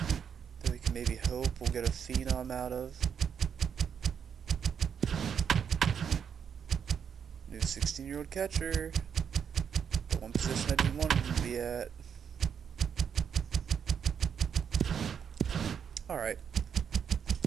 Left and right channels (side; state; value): left; quieter; 7.5 dB